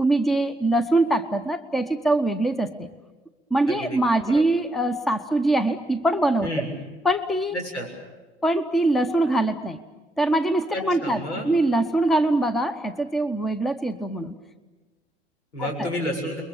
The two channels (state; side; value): normal; both; correlation 0.80